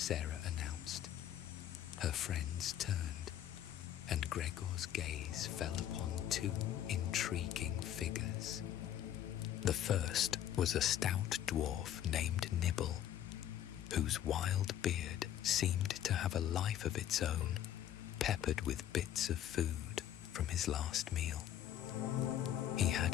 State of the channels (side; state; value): right; quieter; 11.1 dB